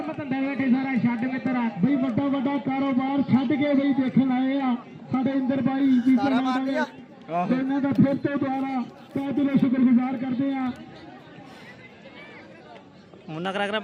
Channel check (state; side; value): identical; both; correlation 1.00